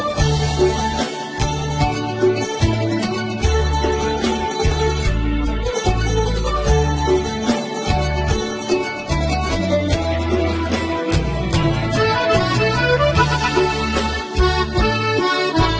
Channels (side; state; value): both; identical; correlation 1.00